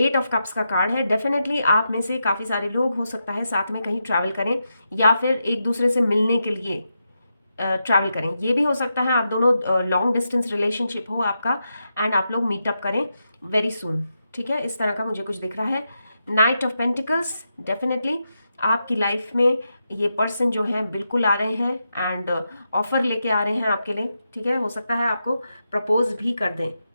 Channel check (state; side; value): inverted; both; correlation -0.87